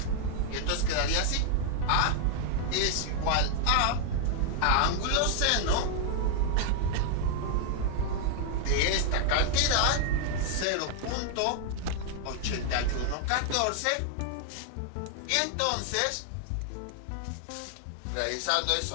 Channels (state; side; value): different; both; correlation 0.00